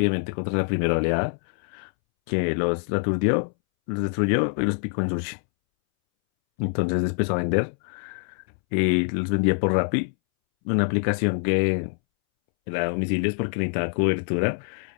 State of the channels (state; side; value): silent; right; 62 dB below the other